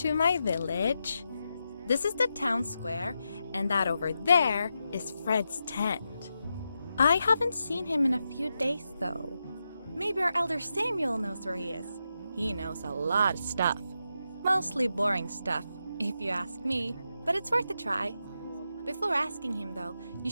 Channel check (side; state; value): both; inverted; correlation -0.87